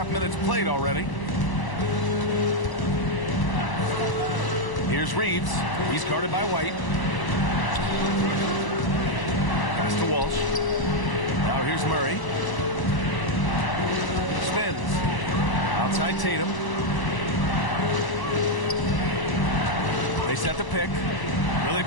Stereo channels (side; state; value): right; late; 1.0 ms